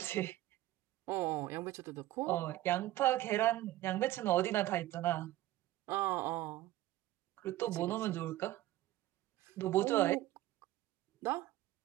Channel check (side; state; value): left; quieter; 15.5 dB